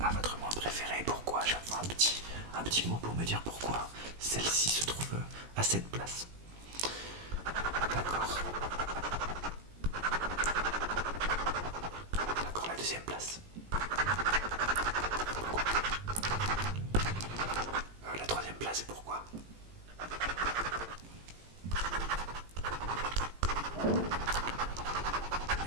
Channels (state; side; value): late; left; 18 ms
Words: votre moins préféré? Pourquoi? Chaque fois un petit mot pour me dire pourquoi celle-ci se trouve à cette place. D'accord. D'accord, la deuxième place. Pourquoi?